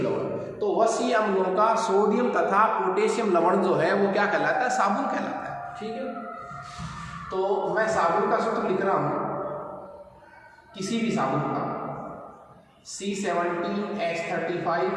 तो वसीय अम्लों का सोडियम तथा पोटेशियम लवण जो है वो क्या कहलाता है? साबुन कहलाता है। ठीक है, तो मैं साबुन का सूत्र लिख रहा हूं, किसी भी साबुन का C17H35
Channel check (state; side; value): identical; both; correlation 1.00